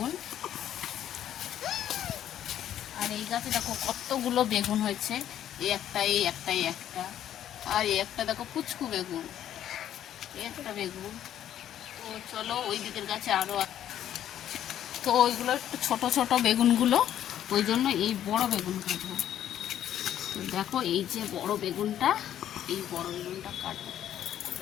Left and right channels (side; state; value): right; quieter; 11.0 dB